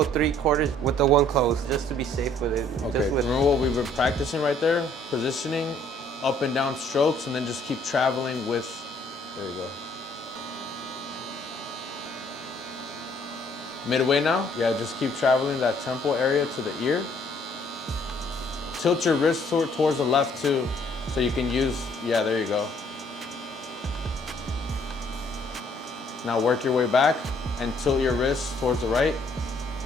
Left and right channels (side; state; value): both; normal; correlation 0.63